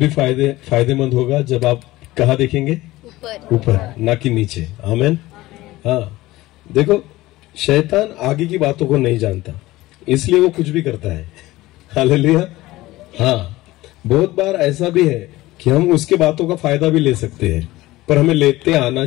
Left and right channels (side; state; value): right; quieter; 18.0 dB